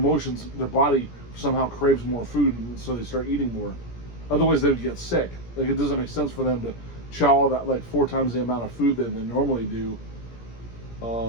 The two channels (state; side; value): late; right; 17 ms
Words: their body somehow craves more food, and so they start eating more. Otherwise, they would get sick. Like it doesn't make sense for them to chow all that like 4 times the amount of food that they normally do.